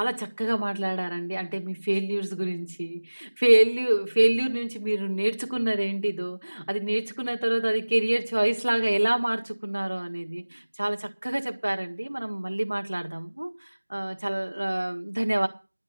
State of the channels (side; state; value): both; inverted; correlation -1.00